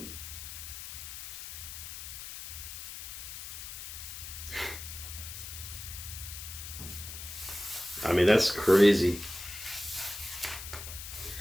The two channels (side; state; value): left; noise; hiss, 9 dB below the sound